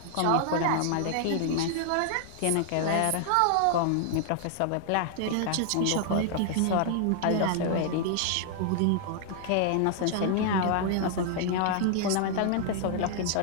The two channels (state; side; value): different; both; correlation 0.00